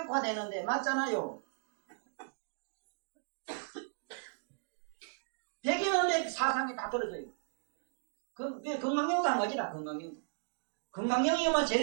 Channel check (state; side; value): silent; left; digital silence